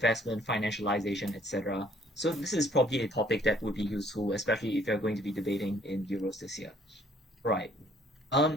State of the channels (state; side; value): normal; both; correlation 0.61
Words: financialization, etc. So this is probably a topic that would be useful, especially if you're going to be debating in Euros this year. Right.